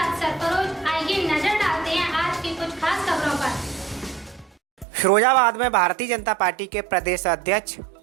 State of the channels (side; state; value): left; drops out; at 4.9 s